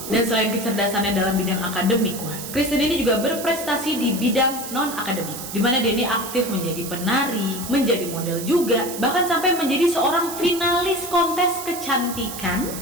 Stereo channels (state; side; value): noise; right; hiss, 9 dB below the sound